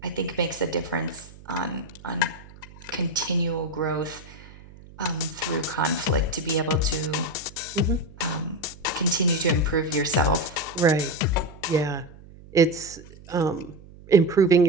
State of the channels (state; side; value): noise; right; hum, 20 dB below the sound